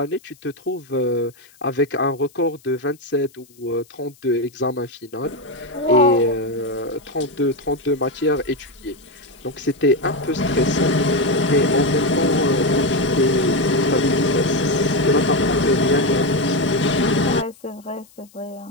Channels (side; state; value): left; noise; hiss, 28 dB below the sound